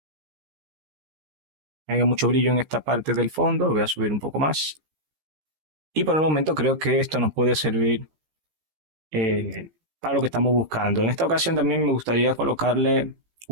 haya mucho brillo en esta parte del fondo. Lo voy a subir un poco más. Y por el momento creo que esto nos puede servir para lo que estamos buscando. En esta ocasión también me gustaría colocarle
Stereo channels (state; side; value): late; left; 15 ms